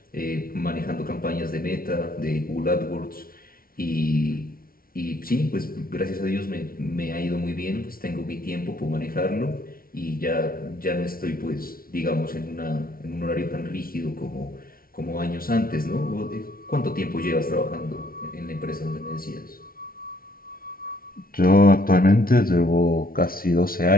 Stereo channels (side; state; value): right; late; 0.43 ms